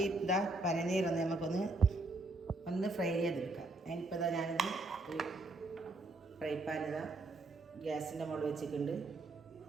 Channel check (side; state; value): left; quieter; 3.1 dB